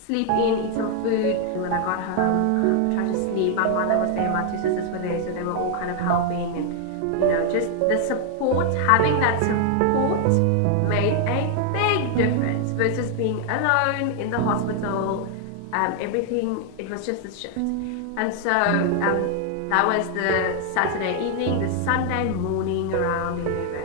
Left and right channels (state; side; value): different; both; correlation 0.00